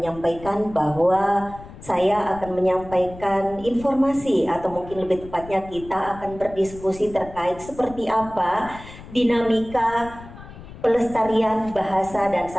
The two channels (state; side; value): noise; left; rumble, 16 dB below the sound